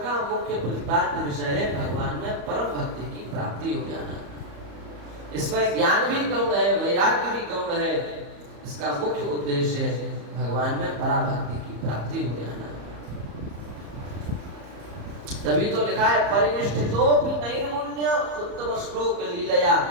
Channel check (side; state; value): left; late; 34 ms